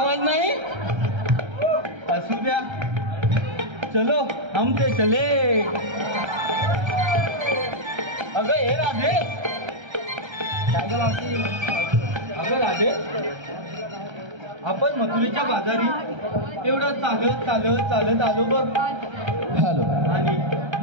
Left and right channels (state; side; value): late; left; 1.3 ms